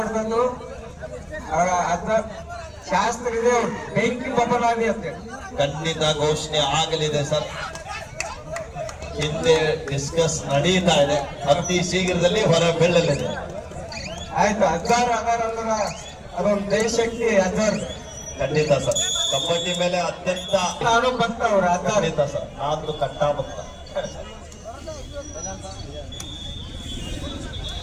ಅದ ಶಾಸ್ತ್ರ ಇದೆ, ಬೆಂಕಿ ಬಬಲಾದಿ ಅಂತ ಖಂಡಿತ ಘೋಷಣೆ ಆಗಲಿದೆ ಸರ್. ಹಿಂದೆ ಡಿಸ್ಕಸ್ ನಡೀತಾ ಇದೆ, ಅತಿ ಶೀಘ್ರದಲ್ಲಿ ಹೊರ ಬೀಳಲಿದೆ. ಆಯ್ತು. ಅಜ್ಜಾರು ಅದಾರ ಅಂದ್ರ ಅದೊಂದು ದೇಶಕ್ಕೆ ಅಜ್ಜಾರು ಖಂಡಿತ ಸರ್. ಕಬಡ್ಡಿ ಮೇಲೆ ಅತ್ಯಂತ ನಾನು ಭಕ್ತ ಅವ್ರ ಅಜ್ಜಾರು. ಖಂಡಿತ ಸರ್, ನಾನು ಕಟ್ಟಾ ಭಕ್ತ.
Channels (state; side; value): identical; both; correlation 1.00